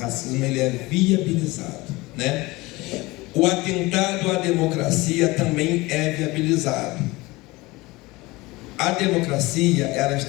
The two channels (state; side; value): quieter; right; 21.7 dB